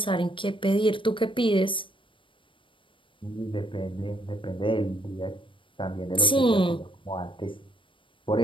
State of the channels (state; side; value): late; right; 0.25 ms